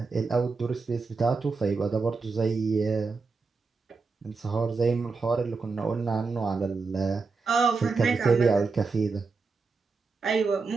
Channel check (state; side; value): quieter; left; 4.4 dB